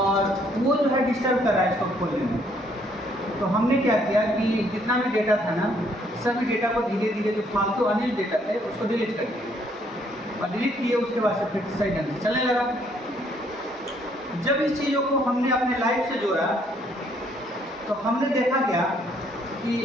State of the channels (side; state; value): both; normal; correlation 0.67